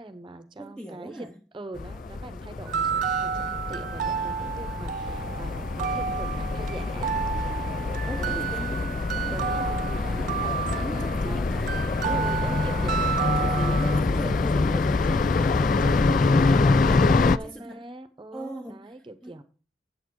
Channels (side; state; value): both; normal; correlation 0.61